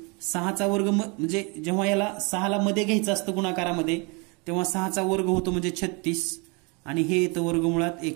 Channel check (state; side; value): quieter; left; 31.1 dB